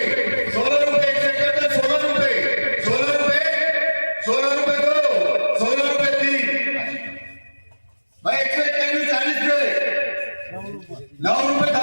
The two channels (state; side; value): inverted; both; correlation -1.00